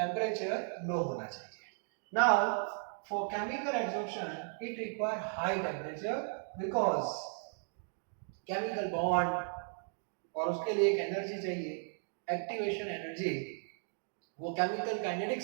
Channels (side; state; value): left; silent; 54 dB below the other